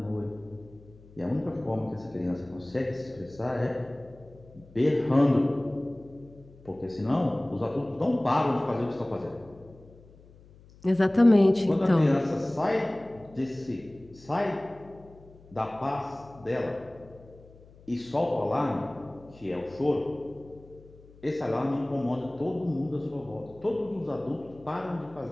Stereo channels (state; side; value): noise; left; hum, 23 dB below the sound